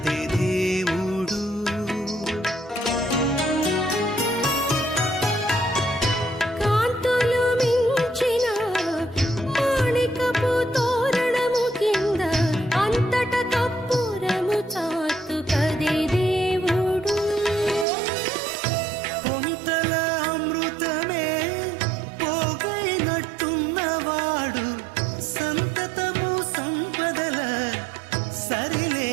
దేవుడు. కాంతులు మించిన మాణికపు తోరణము కింద అంతట కప్పురము చాతు కది దేవుడు. పొంతల అమృతమే పోగైనట్టున్నవాడు సంతతము సంపదల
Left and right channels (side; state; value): left; drops out; at 17.9 s